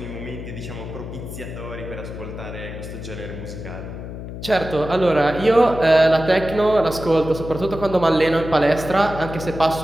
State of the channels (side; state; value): left; noise; hum, 10 dB below the sound